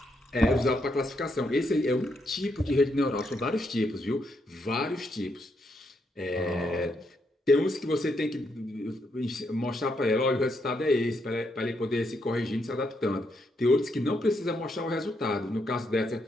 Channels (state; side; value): normal; both; correlation 0.78